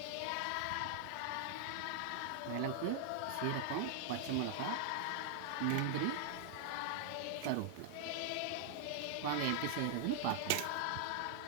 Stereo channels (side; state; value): both; different; correlation 0.00